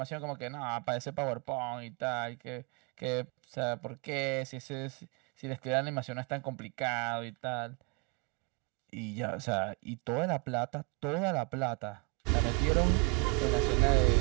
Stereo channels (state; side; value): quieter; left; 29.9 dB